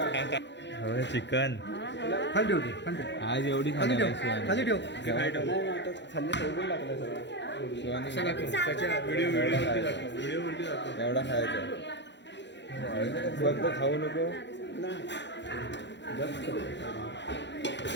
चिकन आज एवढी खाणार एवढा खायचा फक्त खाऊ नको.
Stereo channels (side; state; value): right; late; 0.52 ms